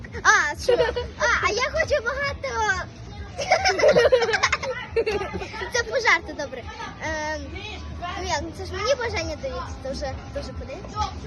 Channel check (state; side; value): identical; both; correlation 1.00